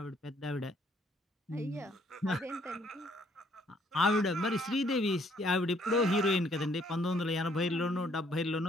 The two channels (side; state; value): both; normal; correlation 0.65